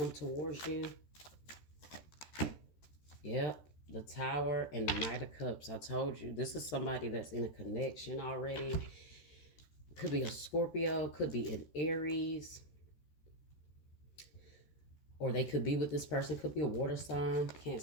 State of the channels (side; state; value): right; late; 14 ms